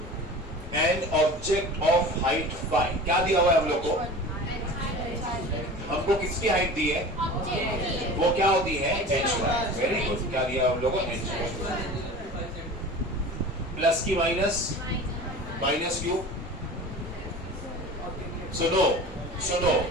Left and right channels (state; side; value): normal; both; correlation 0.37